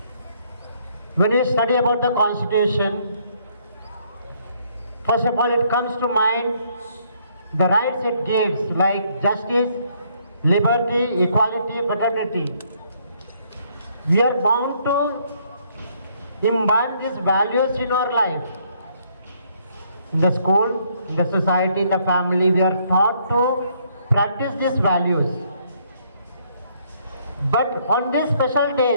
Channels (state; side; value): inverted; both; correlation -0.68